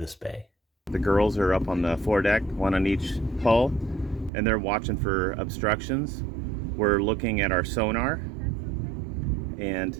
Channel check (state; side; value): drops out; left; at 4.3 s